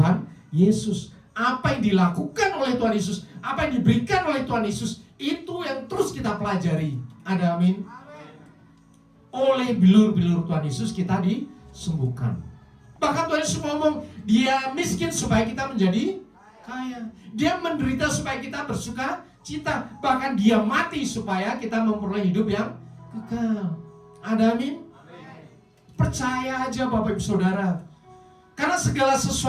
Yesus. Apa yang dilakukan oleh Tuhan Yesus, apa yang diberikan oleh Tuhan Yesus, itu yang terus kita pelajari. Ada amin? Oleh bilur-bilur Tuhan Yesus kita disembuhkan. Bahkan Tuhan Yesus ngomong, dia miskin supaya kita menjadi kaya. Dia menderita supaya kita bersuka cita. Bahkan dia mati supaya kita memperoleh hidup yang kekal. Ada amin? Percaya aja Bapak Ibu Saudara. Karena segala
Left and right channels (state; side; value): identical; both; correlation 1.00